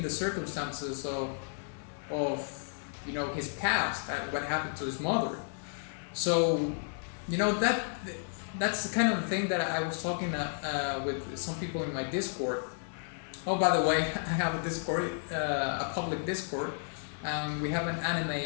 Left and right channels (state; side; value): silent; right; 56 dB below the other